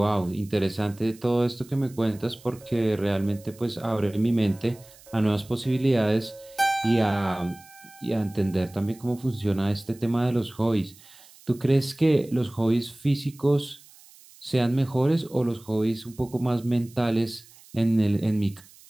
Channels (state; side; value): noise; right; hiss, 24 dB below the sound